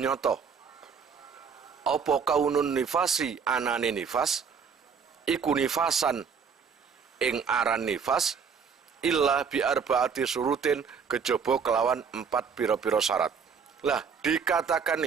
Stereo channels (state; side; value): quieter; left; 6.3 dB